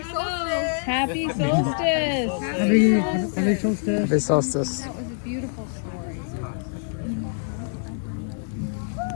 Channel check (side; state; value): right; silent; 62 dB below the other